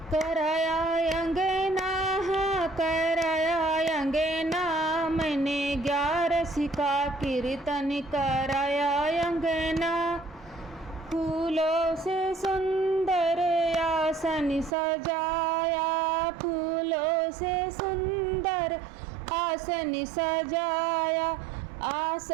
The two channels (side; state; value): left; drops out; at 14.8 s